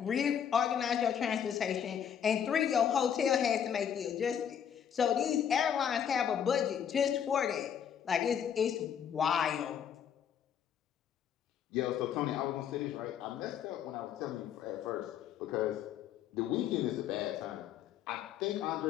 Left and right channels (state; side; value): quieter; right; 8.6 dB